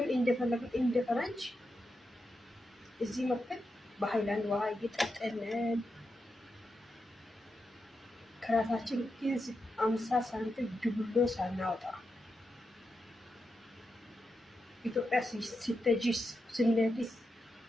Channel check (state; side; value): normal; both; correlation 0.87